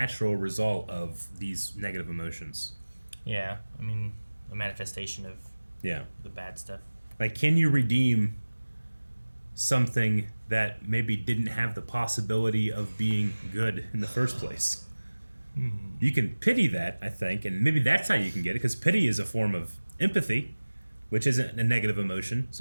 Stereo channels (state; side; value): inverted; both; correlation -1.00